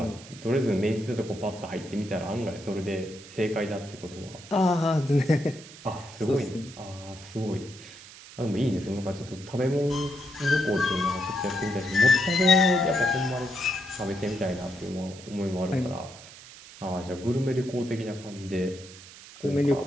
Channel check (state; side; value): noise; right; hiss, 18 dB below the sound